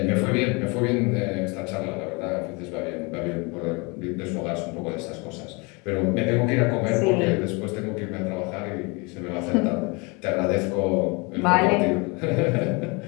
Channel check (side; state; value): right; quieter; 29.0 dB